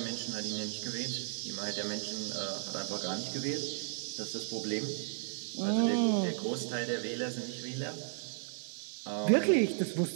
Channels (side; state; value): left; silent; 55 dB below the other